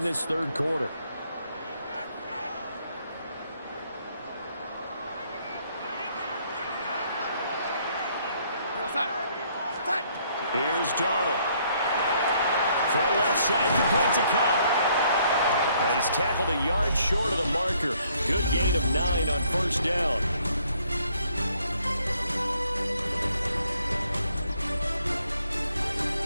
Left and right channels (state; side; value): inverted; both; correlation -0.67